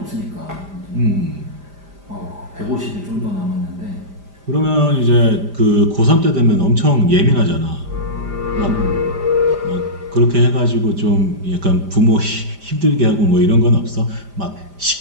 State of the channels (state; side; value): late; left; 5.0 ms